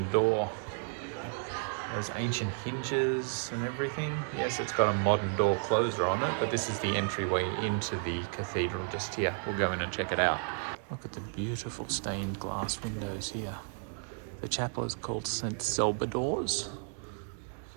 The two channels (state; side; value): silent; left; 56 dB below the other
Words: door. Those ancient hinges and everything. Yes, it's got a modern door closer on it, but this is the entryway into the cathedral just here. We'll go in and check it out. Look at the beautiful stained glass windows here. The chapel is called St. Salvador's